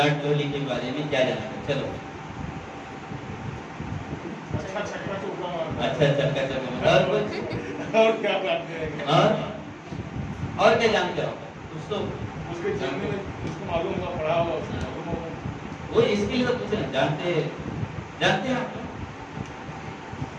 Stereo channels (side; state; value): both; identical; correlation 1.00